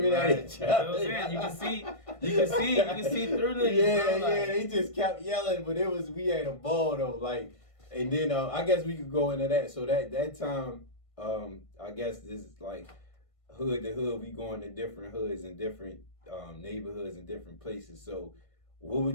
at each other. You can see through niggas. Yeah, they just kept yelling, but we had a ball though. Like, and then I guess we could go into that. So that time, I guess this is like hood to hood. We going to different hoods and different neighborhoods and different places. So, what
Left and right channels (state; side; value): late; right; 1.6 ms